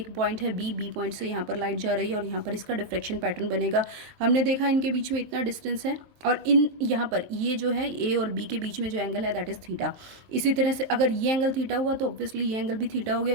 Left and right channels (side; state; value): left; late; 23 ms